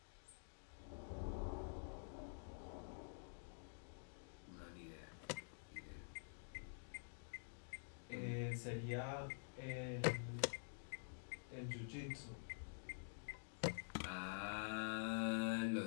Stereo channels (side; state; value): right; silent; digital silence